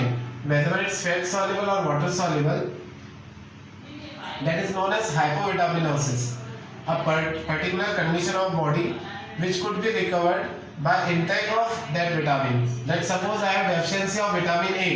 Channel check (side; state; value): both; identical; correlation 1.00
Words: whether it's fat soluble or water soluble, that is known as hypovitaminosis, a particular condition of body which could be recovered by intake of that vitamin. Let's suppose I have deficiency of vitamin